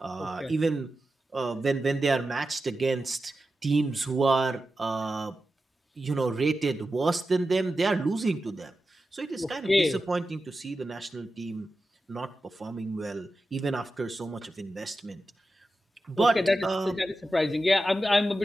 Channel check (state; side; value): normal; both; correlation 0.92